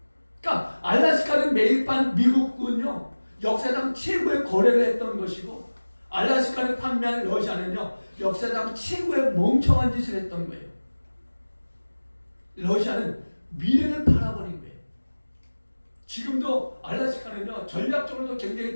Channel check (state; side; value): inverted; both; correlation -1.00